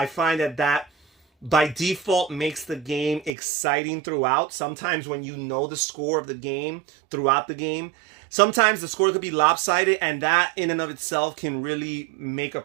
find that by default makes the game exciting throughout. Sometimes when you know the score of the game throughout the game, sometimes the score could be lopsided, and that in and of itself can really make a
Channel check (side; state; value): left; drops out; at 3.3 s